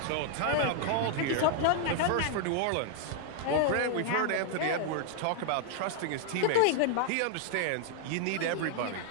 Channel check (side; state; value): both; different; correlation 0.00